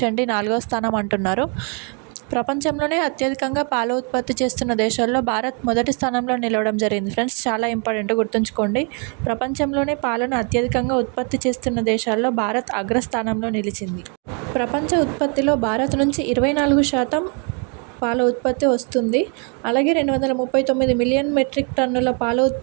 డి 4వ స్థానం అంటున్నారు. ప్రపంచంలోనే అత్యధికంగా పాల ఉత్పత్తి చేస్తున్న దేశాల్లో భారత్ మొదటి స్థానంలో నిలవడం జరిగింది ఫ్రెండ్స్. చాలా ఇంపార్టెంట్, గుర్తుంచుకోండి. ప్రపంచంలోనే పాలను అత్యధికంగా ఉత్పత్తి చేస్తున్న దేశాల్లో భారత్ అగ్రస్థానంలో నిలిచింది. ప్రపంచ ఉత్పత్తిలో భారత్ నుంచి 24% పాల ఉత్పత్తి వస్తుంది. అలాగే 239 మిలియన్ మెట్రిక్ టన్నుల పాల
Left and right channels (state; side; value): quieter; left; 37.5 dB